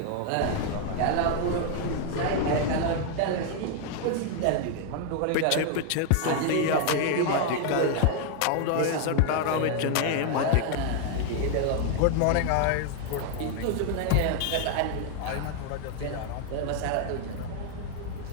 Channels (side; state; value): both; different; correlation 0.00